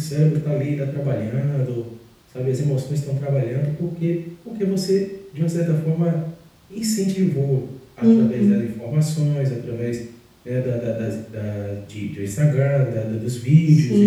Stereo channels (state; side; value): identical; both; correlation 1.00